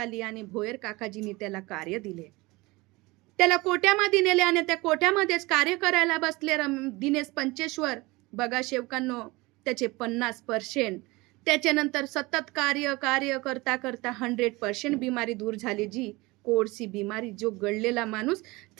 आणि भोयर काकाजींनी त्याला कार्य दिले. त्याला कोट्यामध्ये नेले आणि त्या कोट्यामध्येच कार्य करायला बसले दिनेश पंचेश्वर. बघा शेवकांनो, त्याचे 50%. त्याच्यानंतर सतत कार्य करता करता 100% बिमारी दूर झाली जी. कोडची बिमारी, जो गळलेला माणूस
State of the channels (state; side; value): quieter; left; 22.6 dB